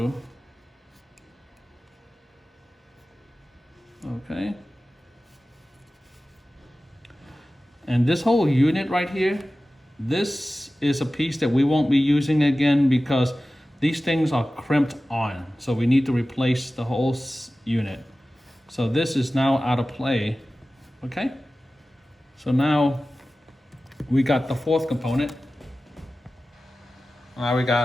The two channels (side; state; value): both; normal; correlation 0.96